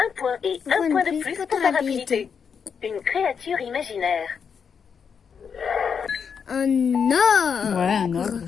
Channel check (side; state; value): right; quieter; 6.6 dB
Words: point et un point de plus pour ta rapidité. Une créature imaginaire. Un or. Ouais, un ogre,